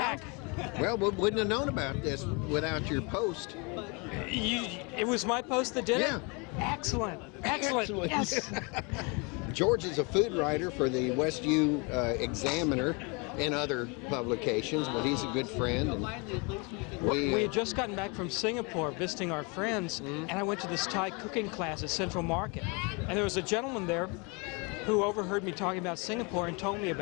Well, we wouldn't have known about this without your post. It was my post that did Yeah. it? Excellent. Excellent. Yes. George is a food writer for the West U Examiner and other publications, but he's a good friend. And we had just gotten back from Singapore visiting our friends, and I went to this Thai cooking class at Central Market. And there was a gentleman there who overheard me talking about Singapore and told me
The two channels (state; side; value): quieter; right; 30.9 dB